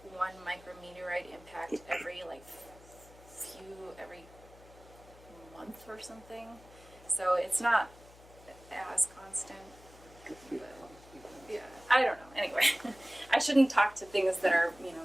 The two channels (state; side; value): noise; left; hum, 22 dB below the sound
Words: 1 micrometeorite impact every month or something. So it's not as constant. Yeah, I don't know. Anyway, I shouldn't talk to things that are,